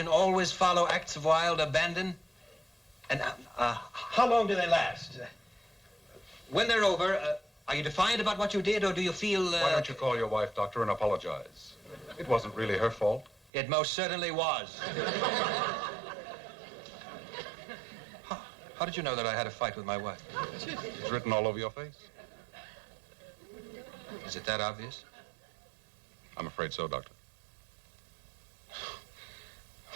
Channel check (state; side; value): drops out; left; at 13.5 s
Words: always follow acts of wild abandon? And how long do they last? When they're over, are you defiant about what you did, or do you feel... Why don't you call your wife, Doctor, and apologize? It wasn't really her fault. It most certainly was. How did you know that I had a fight with my wife? It's written all over your face. Is it that obvious? I'm afraid so, Doctor.